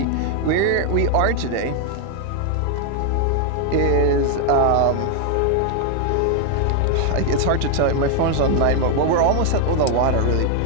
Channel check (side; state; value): both; different; correlation 0.00